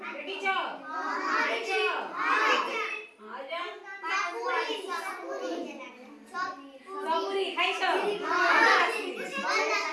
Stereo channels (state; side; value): identical; both; correlation 1.00